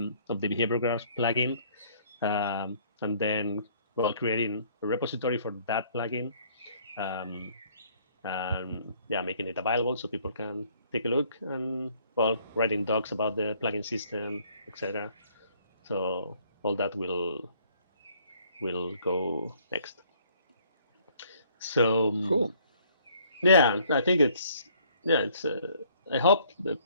behavior graphs plugin, and then creating a repository for that plugin, um, and making it available so people can take a look, and writing docs about the plugin system, etc. So all that will go next. So Cool. I think it's I hope that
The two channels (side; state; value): both; inverted; correlation -0.61